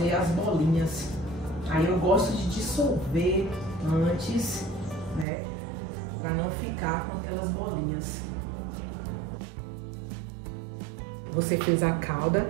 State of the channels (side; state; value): left; drops out; at 5.2 s